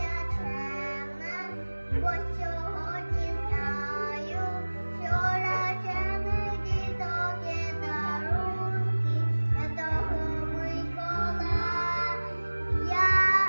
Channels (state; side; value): inverted; both; correlation -1.00